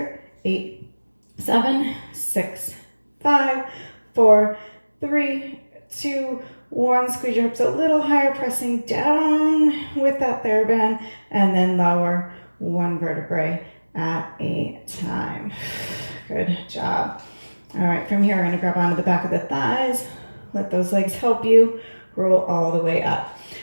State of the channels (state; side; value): inverted; both; correlation -1.00